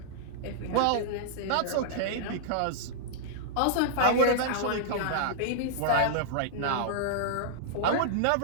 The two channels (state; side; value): different; both; correlation -0.02